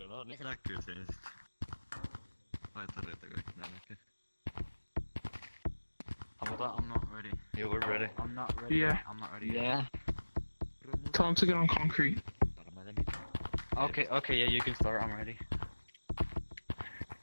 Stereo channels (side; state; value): both; inverted; correlation -1.00